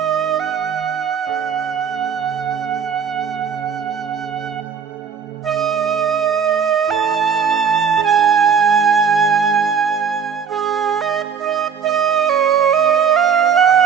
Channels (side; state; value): left; quieter; 6.8 dB